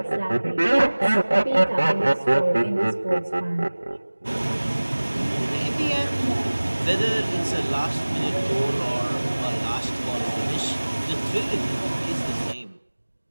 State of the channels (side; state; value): both; inverted; correlation -1.00